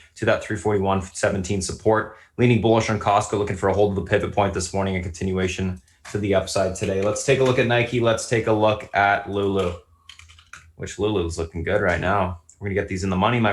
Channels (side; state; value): both; identical; correlation 1.00